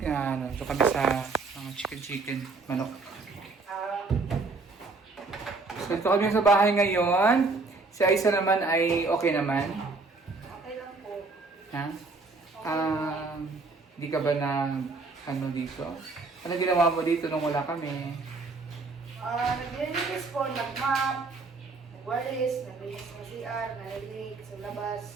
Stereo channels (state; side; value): quieter; left; 3.8 dB